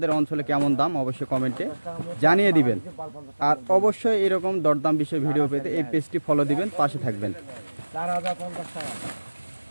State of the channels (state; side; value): inverted; both; correlation -1.00